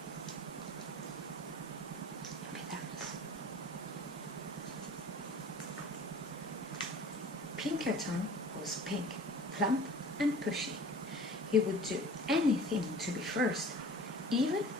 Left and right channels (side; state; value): both; normal; correlation 0.44